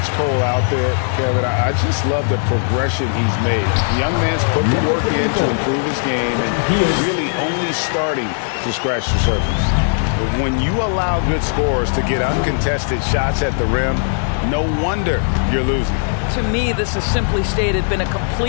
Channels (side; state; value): right; silent; digital silence